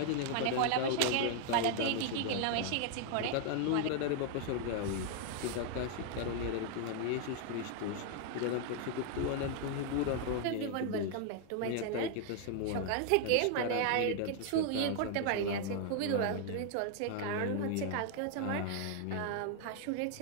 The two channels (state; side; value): different; both; correlation 0.00